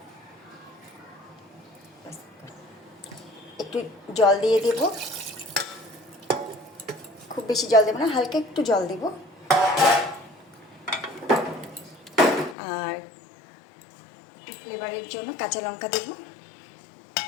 একটু জল দিয়ে দেব, খুব বেশি জল দেব না, হালকা একটু জল দেব। আর একটু ফ্লেভারের জন্য কাঁচা লঙ্কা দেব।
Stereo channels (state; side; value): drops out; right; at 12.6 s